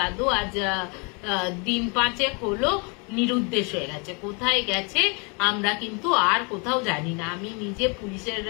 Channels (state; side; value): quieter; right; 33.3 dB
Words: আজ দিন 5 হলো নিরুদ্দেশ হয়ে গেছে, কোথায় গেছে আমরা কিন্তু আর কোথাও জানি না। আমি নিজে পুলিশের